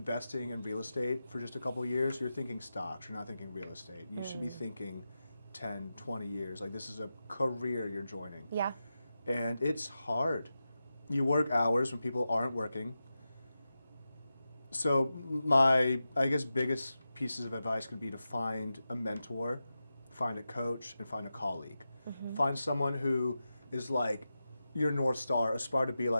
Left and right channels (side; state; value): both; inverted; correlation -0.92